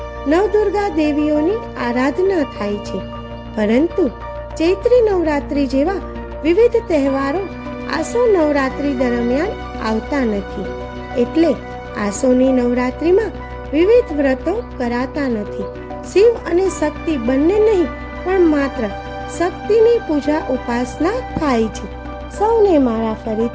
નવદુર્ગા દેવીઓની આરાધના થાય છે, પરંતુ ચૈત્રી નવરાત્રિ જેવા વિવિધ તહેવારો આસો નવરાત્રિ દરમિયાન આવતા નથી. એટલે આસોની નવરાત્રિમાં વિવિધ વ્રતો કરાતા નથી. શિવ અને શક્તિ બંને નહીં, પણ માત્ર શક્તિની પૂજા ઉપાસના થાય છે. સૌને મારા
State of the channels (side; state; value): both; identical; correlation 1.00